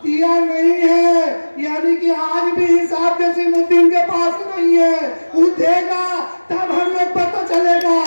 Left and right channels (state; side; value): inverted; both; correlation -1.00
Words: दिया नहीं है, यानी कि आज भी हिसाब जसीमुद्दीन के पास नहीं है। वो देगा तब हम लोग पता चलेगा।